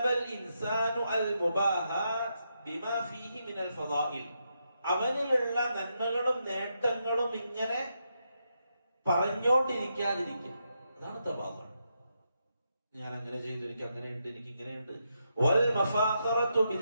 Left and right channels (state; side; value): inverted; both; correlation -0.82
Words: ഇൻസാനു അൽ മുബാഹാത് ബിമാ ഫീഹി മിനൽ ഫളാഇൽ, അവനിലുള്ള നന്മകളും നേട്ടങ്ങളും ഇങ്ങനെ പറഞ്ഞോണ്ടിരിക്കാതിരിക്കുക. അതാണ് തവാദുഅ. ഞാൻ അങ്ങനെ ചെയ്തു, എനിക്ക് അങ്ങനെയുണ്ട്, എനിക്ക് ഇങ്ങനെയുണ്ട്. വൽ മഫാഖറതു